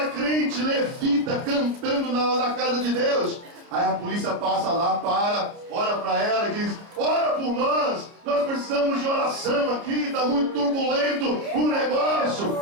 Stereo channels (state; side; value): late; left; 29 ms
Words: crente, levita, cantando na casa de Deus. Aí a polícia passa lá, olha para ela e diz: ora por nós precisamos de oração aqui, está muito turbulento o negócio.